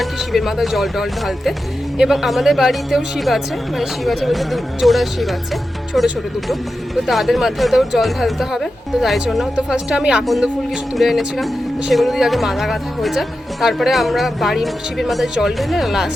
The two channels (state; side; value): normal; both; correlation 0.91